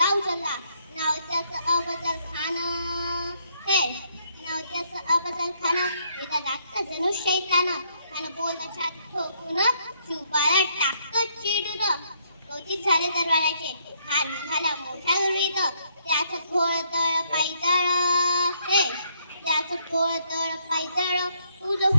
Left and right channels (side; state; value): both; inverted; correlation -0.70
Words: उचलला. नाव त्याचं अफजल खान हे, नाव त्याचं अफजल खान. एका जागतं जणू शैतान. त्यानं बोललं छाती ठोकून, शिवबाला टाकतं चिडून. कौतिक झाले दरबाराचे, हार निघाला मोठा गुरवीत. त्याचं घोळदळ पायदळ हे, त्याचं घोळदळ पायदळ, तुझं